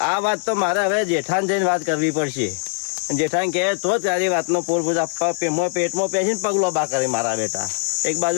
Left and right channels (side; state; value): right; silent; digital silence